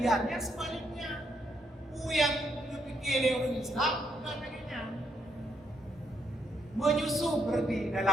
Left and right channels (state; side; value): normal; both; correlation 0.76